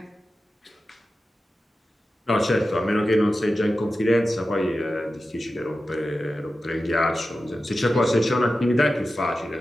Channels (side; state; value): both; normal; correlation 0.93